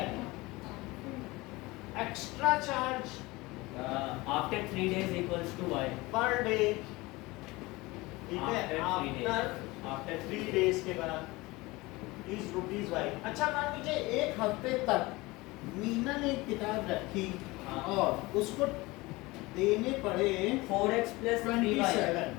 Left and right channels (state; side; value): quieter; right; 21.8 dB